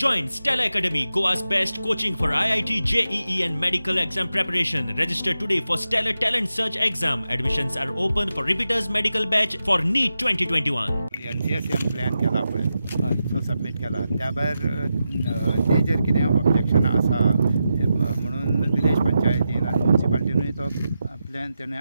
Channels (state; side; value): inverted; both; correlation -0.89